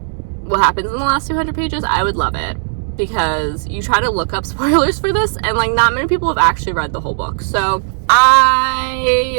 what happens in the last 200 pages, I would love it, because you try to look up spoilers for this, and like not many people have actually read the whole book. So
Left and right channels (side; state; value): left; silent; digital silence